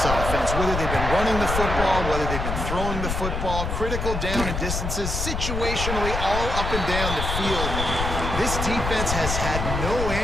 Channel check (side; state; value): left; noise; rumble, 3 dB below the sound